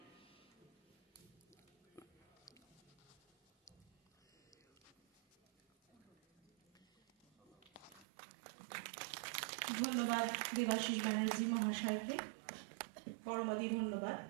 ধন্যবাদ দেবাশিস ব্যানার্জি মহাশয়কে, পরমাদি ধন্যবাদ।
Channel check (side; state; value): left; drops out; at 8.1 s